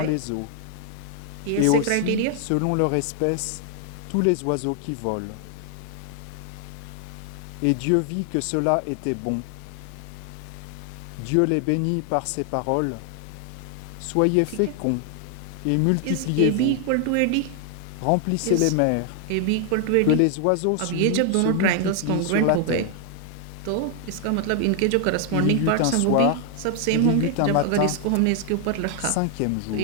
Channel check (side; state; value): both; different; correlation 0.00